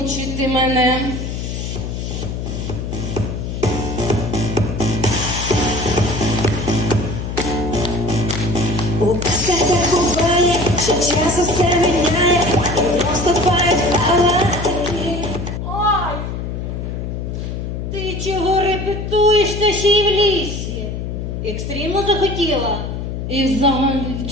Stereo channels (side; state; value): left; noise; hum, 5 dB below the sound